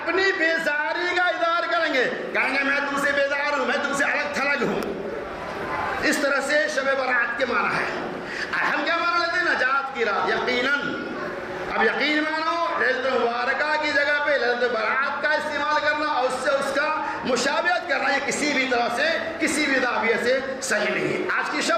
بیزاری کا اظہار کریں گے, کہیں گے میں تم سے بیزار ہوں, میں تم سے الگ تھلگ ہوں. اس طرح سے شب برات کے معنی ہے. ہم کیا معنی لیتے ہیں؟ نجات کی رات. یقیناً اب یقین مانو ليلۃ مبارکہ کی جگہ پہ ليلۃ برات کا استعمال کرنا اور اس سے اس کا مشابہت کرنا یہ کسی بھی طرح سے کسی بھی زاویے سے صحیح نہیں ہے. آج کی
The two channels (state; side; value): identical; both; correlation 1.00